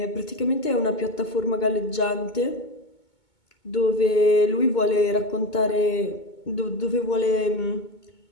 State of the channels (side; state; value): right; late; 2.2 ms